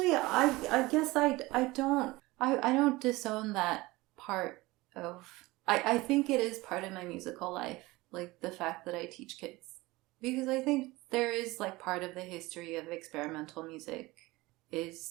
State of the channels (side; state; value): left; quieter; 20.8 dB